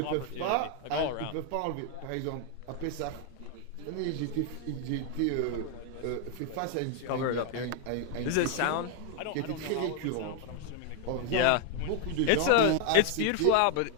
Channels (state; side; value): different; both; correlation 0.00